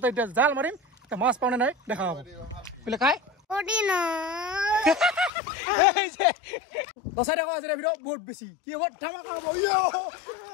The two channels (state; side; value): drops out; right; at 5.3 s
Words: এতিয়া জাল মাৰিম। এতিয়া মাছ পাওঁনে নাই দেখা হ'ব। বোলে কাই দচাই দেখা আছে ভিডিঅ' বহুত বেছি কি হ'ব, ধামাকা হ'ব।